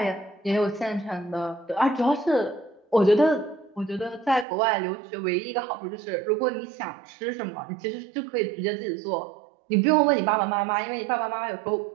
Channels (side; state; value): left; drops out; at 4.5 s